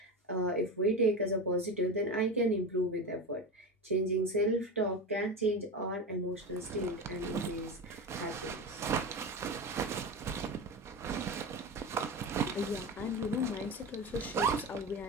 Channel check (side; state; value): both; normal; correlation 0.24